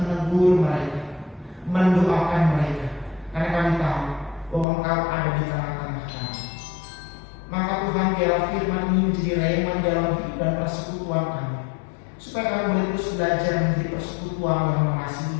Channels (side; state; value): right; drops out; at 4.7 s